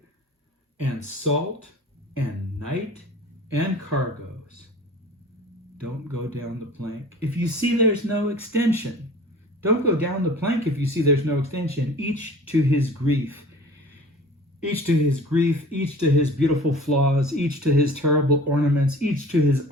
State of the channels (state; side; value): normal; both; correlation 0.44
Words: and salt and night and cargoes. Don't go down the plank if you see there's no extension. Don't go down the plank if you see there's no extension. Each to his grief. Each to his grief, each to his beautiful flaws, each to his terrible ornaments, each to his